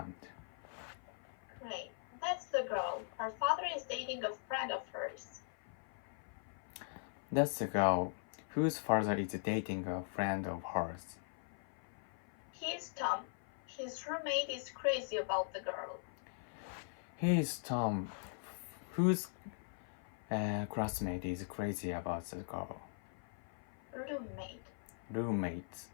Great. That's the girl. Her father is dating a friend of hers. That's the girl whose father is dating a friend of hers. He's Tom. His roommate is crazy about the girl. He is Tom, whose classmate is crazy about the girl. Roommate.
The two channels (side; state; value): right; silent; 51 dB below the other